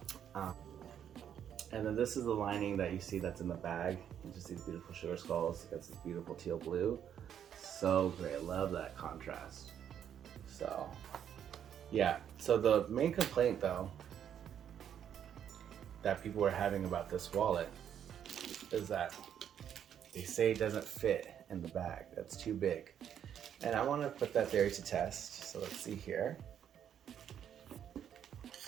And then this is the lining that you see that's in the bag. You just see these beautiful sugar skulls. It gets this beautiful teal blue. So great, I love that contrast. So, yeah. So the main complaint though, that people were having about this wallet is that they say it doesn't fit in the bag. That's too big. And I want to put that theory to test. So let's see here.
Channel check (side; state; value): left; quieter; 9.2 dB